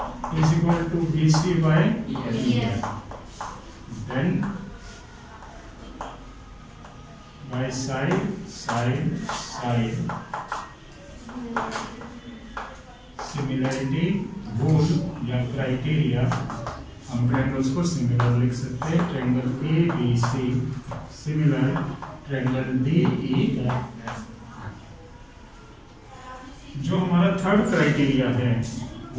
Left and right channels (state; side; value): identical; both; correlation 1.00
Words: is equal to BC by EF, then by side similarity rule या क्राइटेरिया हम ट्रायंगल्स को सिमिलर लिख सकते हैं। Triangle ABC similar triangle DE। जो हमारा थर्ड क्राइटेरिया है